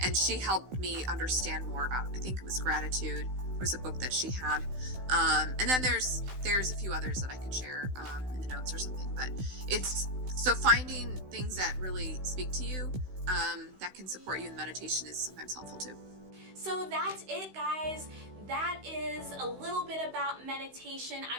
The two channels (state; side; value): late; left; 16 ms